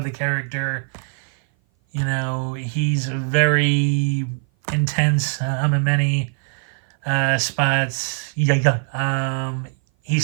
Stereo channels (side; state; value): left; silent; 57 dB below the other